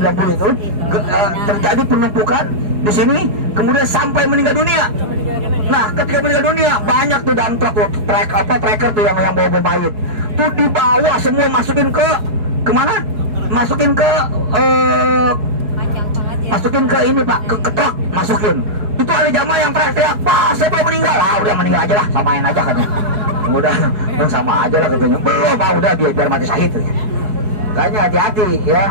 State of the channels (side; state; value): left; late; 4.8 ms